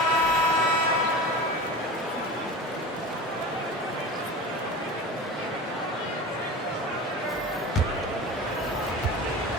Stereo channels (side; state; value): both; normal; correlation 0.31